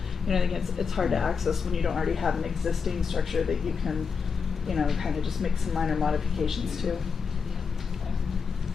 you know, I think it's hard to access when you don't already have an existing structure that you can, you know, kind of just make some minor modifications to.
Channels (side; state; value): right; quieter; 5.7 dB